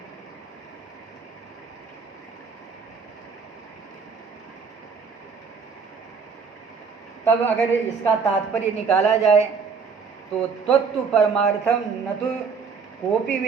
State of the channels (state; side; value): quieter; left; 5.5 dB